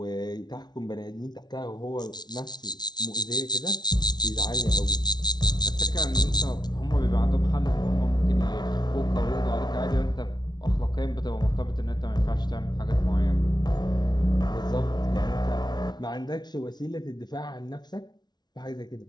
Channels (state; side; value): late; right; 0.20 ms